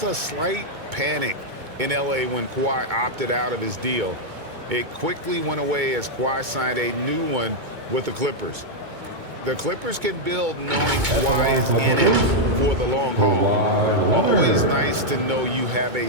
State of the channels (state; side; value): late; left; 2.2 ms